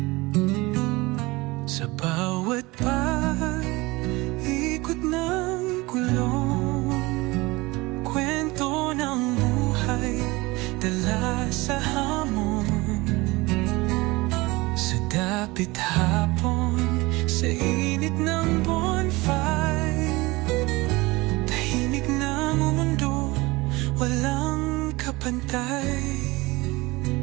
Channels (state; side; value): quieter; left; 22.3 dB